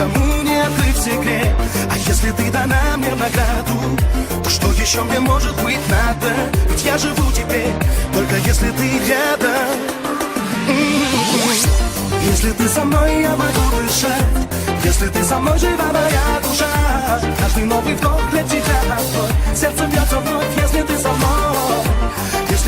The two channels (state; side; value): identical; both; correlation 1.00